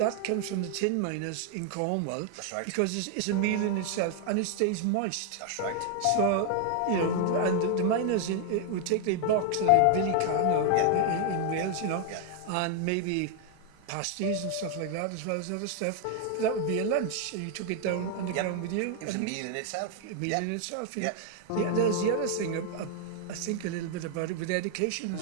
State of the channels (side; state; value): both; different; correlation 0.00